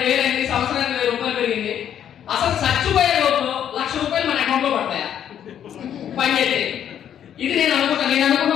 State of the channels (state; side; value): quieter; right; 9.7 dB